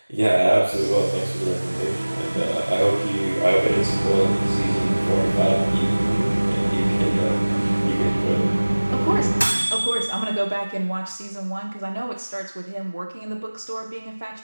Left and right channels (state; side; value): inverted; both; correlation -1.00